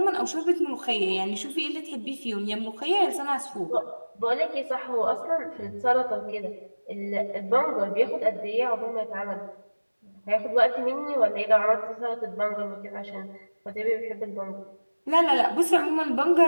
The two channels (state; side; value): inverted; both; correlation -1.00